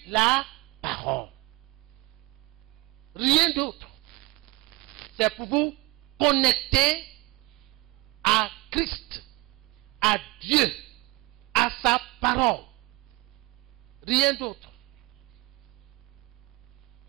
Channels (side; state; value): left; quieter; 21.5 dB